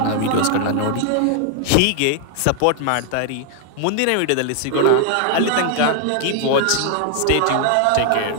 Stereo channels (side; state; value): both; different; correlation 0.00